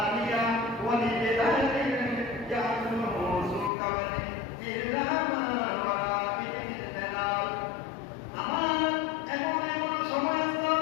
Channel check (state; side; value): drops out; right; at 3.7 s